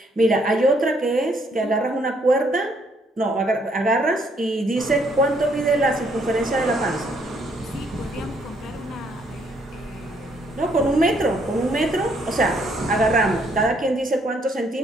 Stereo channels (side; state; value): both; normal; correlation 0.69